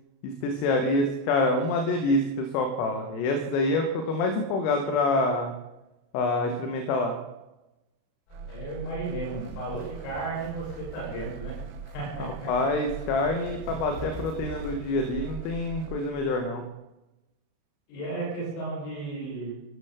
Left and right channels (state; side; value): late; right; 31 ms